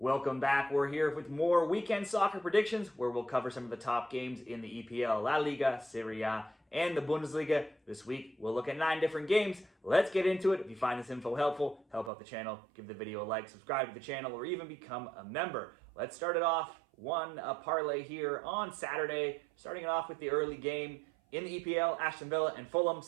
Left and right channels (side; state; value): left; drops out; at 12.1 s